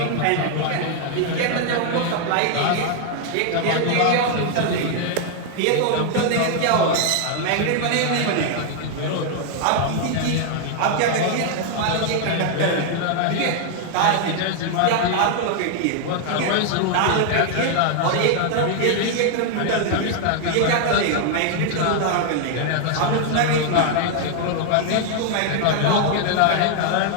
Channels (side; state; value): both; different; correlation 0.00